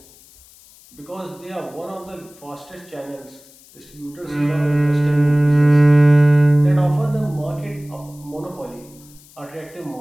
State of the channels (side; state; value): left; noise; hiss, 25 dB below the sound